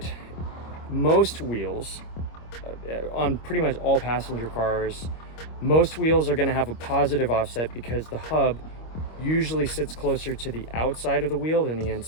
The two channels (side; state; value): right; late; 25 ms